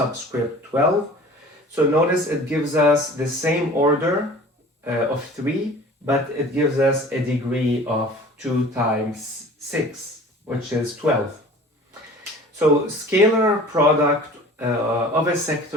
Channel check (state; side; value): normal; both; correlation 0.44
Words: 12. So notice it gives us the same order of 3, but it gives us a degree of 2 times 6, which is 12. So scalar product of a